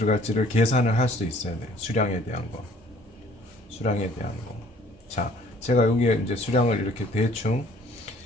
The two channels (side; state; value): both; normal; correlation 0.56